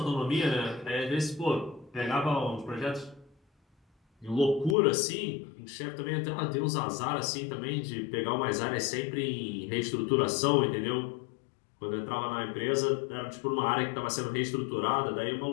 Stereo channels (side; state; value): right; drops out; at 4.8 s